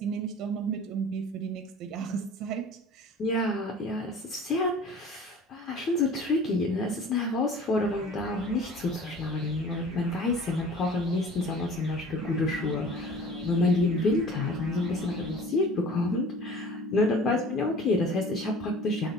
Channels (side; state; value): both; normal; correlation 0.44